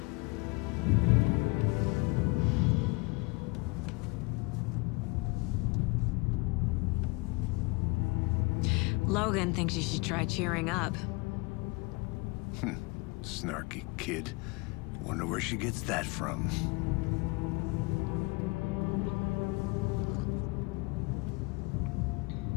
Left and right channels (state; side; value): quieter; right; 26.6 dB